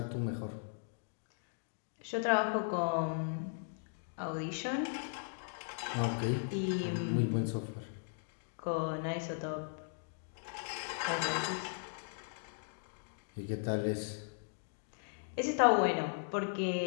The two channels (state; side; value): silent; right; digital silence